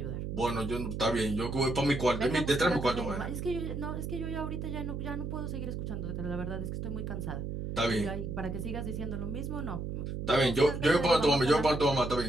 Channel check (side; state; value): right; noise; hum, 4 dB below the sound